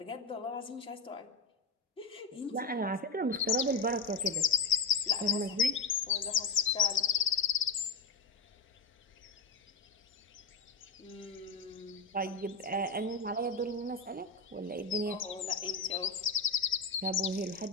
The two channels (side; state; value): right; quieter; 3.8 dB